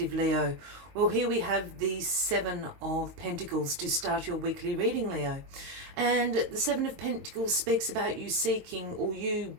Leo. Well, here we have the Seven of Pentacles to start your weekly reading, Leo. And the Seven of Pentacles speaks about you seeking or you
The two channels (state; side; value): late; left; 22 ms